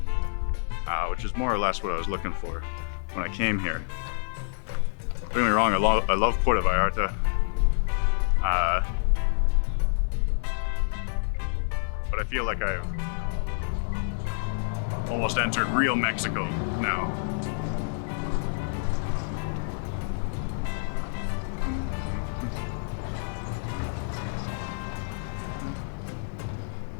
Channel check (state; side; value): silent; right; digital silence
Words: which is more or less what I was looking for when I came here. Don't get me wrong, I love Puerto Vallarta. But I feel like I've almost entered real Mexico now.